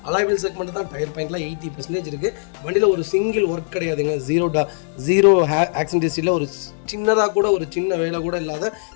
அலாய்வில் செக்மெண்ட் தான். டயர் பாயிண்ட்லாம் 80% இருக்குது. வண்டியில் ஒரு சிங்கிள் ஒர்க் கிடையாதுங்க. ஜீரோ ஆக்சிடென்ட் ஹிஸ்ட்ரியில் ஒரு சின்னதாக கூட ஒரு சின்ன வேலை கூட இல்லாத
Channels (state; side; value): silent; right; digital silence